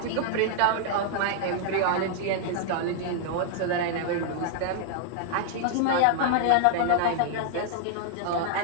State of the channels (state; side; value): different; both; correlation -0.01